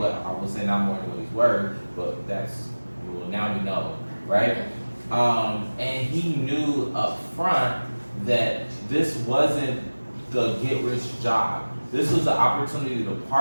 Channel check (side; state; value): both; inverted; correlation -1.00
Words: I would say not more than what he's worth, but that's, well, now we know, right? And he knew up front that this wasn't the get-rich job. This was an opportunity to